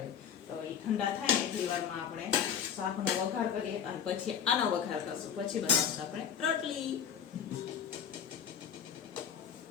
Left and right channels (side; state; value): right; quieter; 8.1 dB